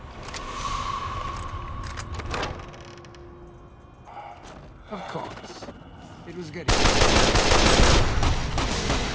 Of course. It was getting... To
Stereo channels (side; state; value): both; identical; correlation 1.00